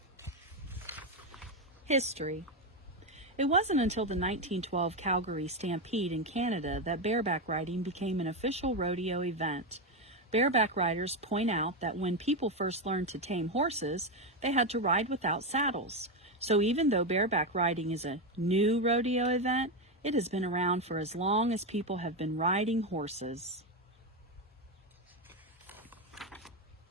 History. It wasn't until the 1912 Calgary Stampede in Canada that bareback riding became an official rodeo event. Bareback riders point out that when people first learned to tame horses, they had to ride without saddles. So even though bareback riding is a new rodeo event, it has been around for as long as people have been riding horses.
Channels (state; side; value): normal; both; correlation 0.10